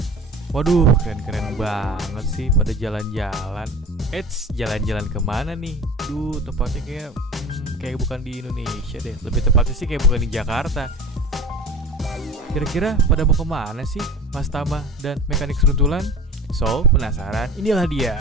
Waduh, keren-keren banget sih pada jalan-jalan. Jalan-jalan kemana nih? Tempatnya kayak bukan di Indonesia deh. Lebih tepatnya sih kayak bukan di Jakarta. Kira-kira pada mau kemana sih Mas Tama dan Mekanik Seruntulan? So, penasaran? Inilah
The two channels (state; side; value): normal; both; correlation 0.38